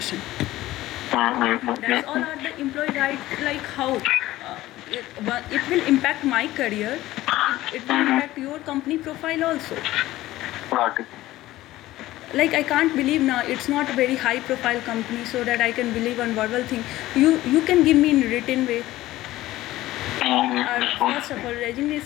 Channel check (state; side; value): quieter; right; 16.2 dB